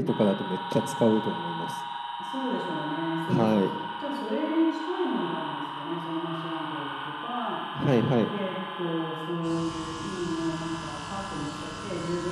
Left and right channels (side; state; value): both; identical; correlation 1.00